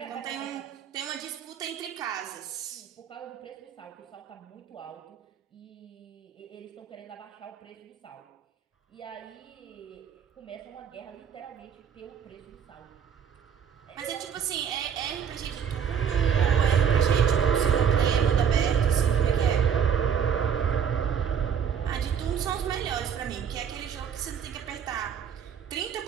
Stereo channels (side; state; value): left; quieter; 7.7 dB